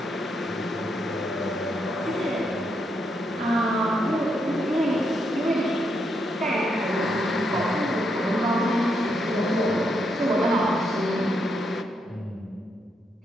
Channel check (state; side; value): normal; both; correlation 0.79